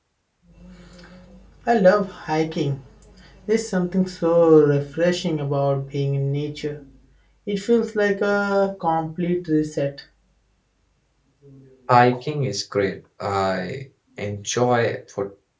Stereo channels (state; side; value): identical; both; correlation 1.00